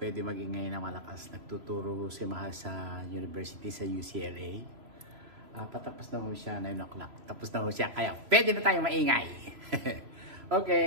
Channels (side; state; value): left; late; 3.0 ms